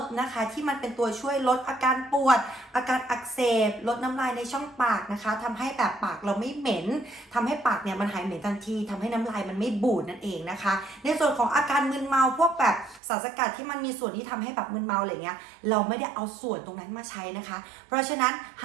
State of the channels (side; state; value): left; drops out; at 13.0 s